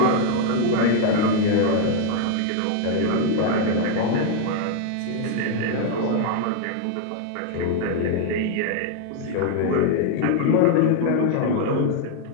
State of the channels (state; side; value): different; both; correlation 0.00